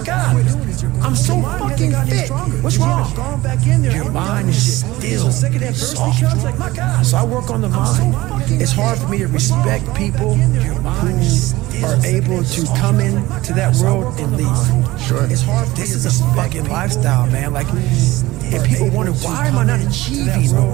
God, I'm so fucking fit. What's wrong? Your mind is still soft. So I work on the mind. It's hard for me to respect people who are able to come into that world and leave. Sure. It's hard. This is a fucking lifestyle, man. Like, and people wonder, why am I not achieving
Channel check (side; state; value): left; quieter; 18.5 dB